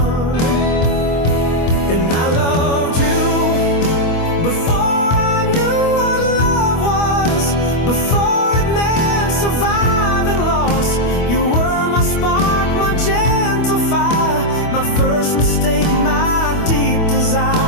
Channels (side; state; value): right; late; 25 ms